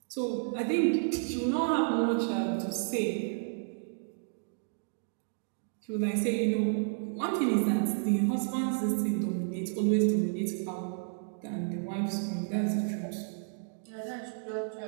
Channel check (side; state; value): left; silent; digital silence